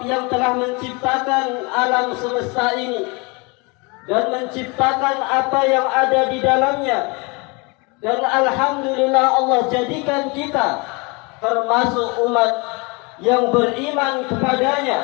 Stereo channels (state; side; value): quieter; right; 29.1 dB